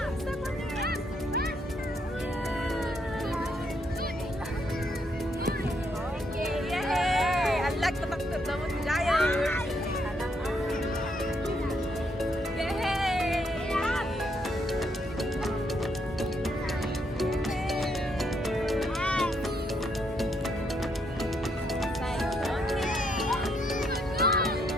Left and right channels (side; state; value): both; normal; correlation 0.75